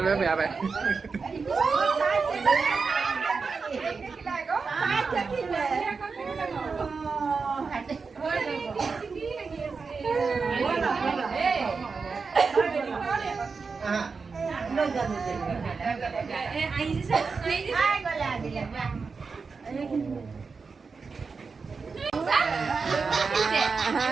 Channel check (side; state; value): left; quieter; 4.8 dB